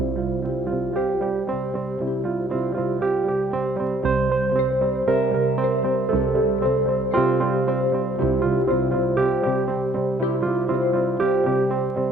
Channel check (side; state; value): both; normal; correlation 0.66